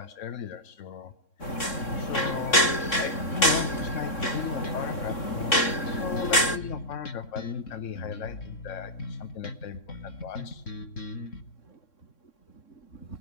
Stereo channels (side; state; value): right; late; 3.6 ms